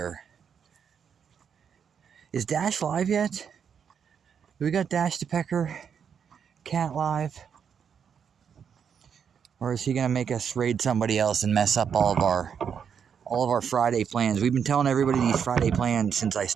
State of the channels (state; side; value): quieter; left; 7.4 dB